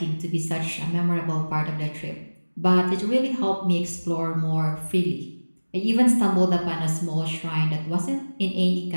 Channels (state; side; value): inverted; both; correlation -1.00